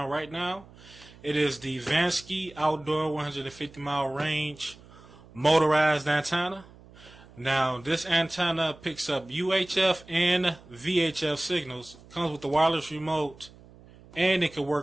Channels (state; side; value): noise; right; hum, 22 dB below the sound